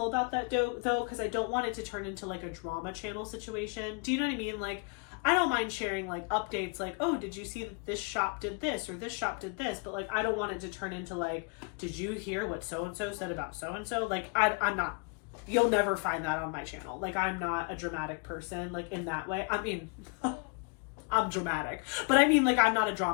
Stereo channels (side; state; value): right; quieter; 33.0 dB